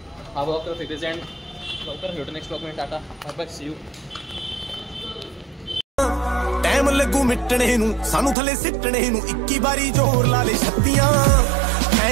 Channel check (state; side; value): drops out; left; at 8.3 s